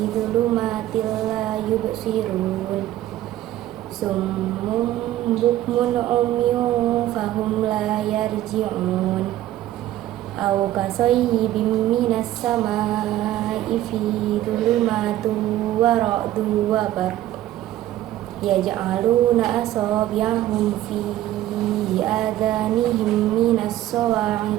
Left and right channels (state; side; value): quieter; left; 13.9 dB